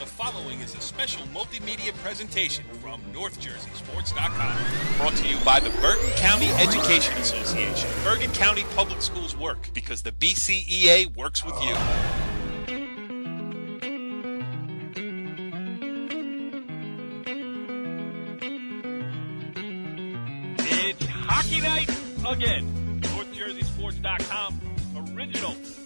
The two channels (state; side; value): inverted; both; correlation -1.00